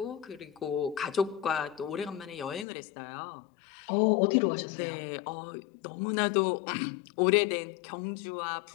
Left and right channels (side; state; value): right; drops out; at 2.7 s